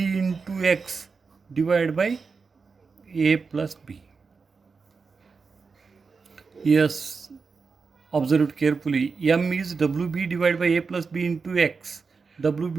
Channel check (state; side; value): quieter; left; 4.9 dB